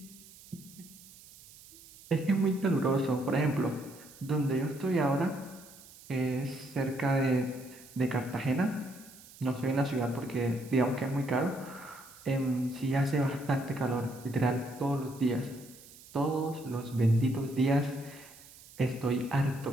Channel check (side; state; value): right; noise; hiss, 21 dB below the sound